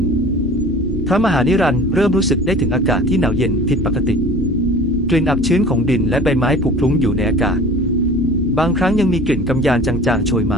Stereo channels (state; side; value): normal; both; correlation 0.43